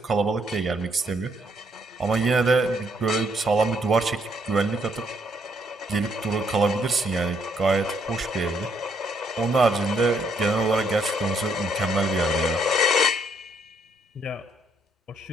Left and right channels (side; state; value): both; normal; correlation 0.71